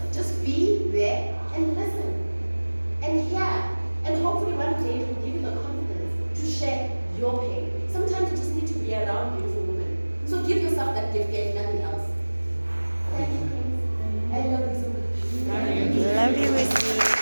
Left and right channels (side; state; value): both; inverted; correlation -1.00